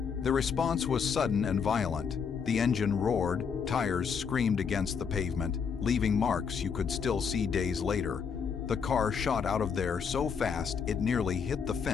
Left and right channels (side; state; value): right; quieter; 6.4 dB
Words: The response was sudden and violent. The engine roared, tires screamed against the pavement, leaving marks you could still see days later. The car shot out of there so fast it nearly hit the